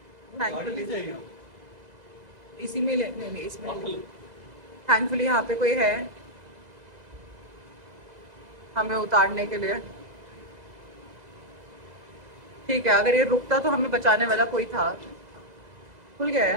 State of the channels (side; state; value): left; late; 2.0 ms